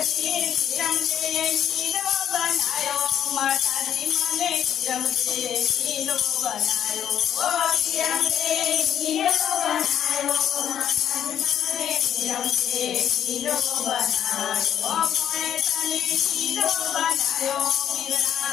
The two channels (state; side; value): quieter; right; 9.9 dB